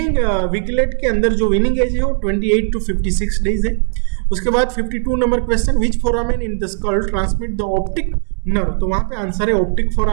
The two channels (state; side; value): silent; left; 64 dB below the other